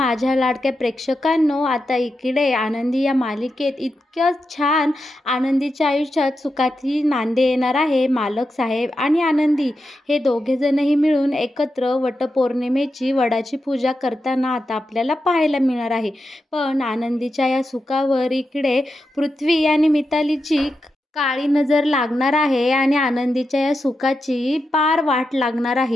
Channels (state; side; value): normal; both; correlation 0.88